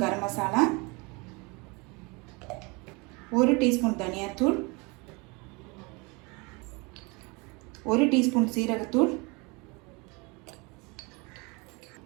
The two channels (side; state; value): left; quieter; 28.1 dB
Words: கரம் மசாலா, 1 டீஸ்பூன் தனியாத்தூள், 1 டீஸ்பூன் சீரகத்தூள்,